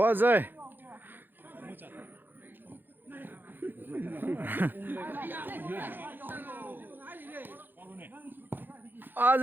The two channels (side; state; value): left; late; 0.093 ms